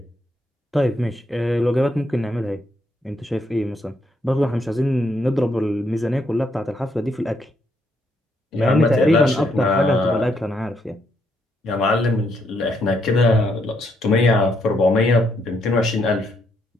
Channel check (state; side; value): normal; both; correlation 0.75